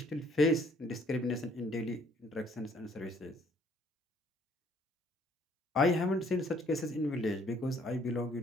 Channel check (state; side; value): normal; both; correlation 0.62